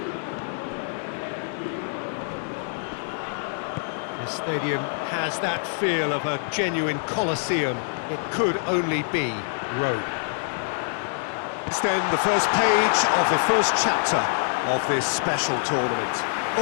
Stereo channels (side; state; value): right; silent; 61 dB below the other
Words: This stadium has that feel of a genuine Colosseum. It could only be Rome. It's then the first page of the first chapter of this special tournament.